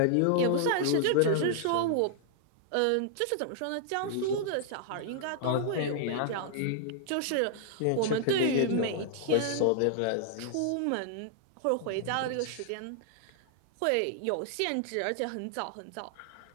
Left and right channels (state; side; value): different; both; correlation -0.01